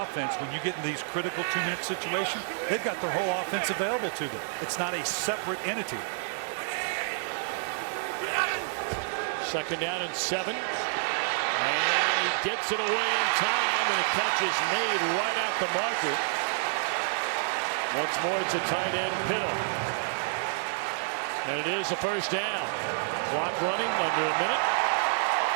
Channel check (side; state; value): left; silent; digital silence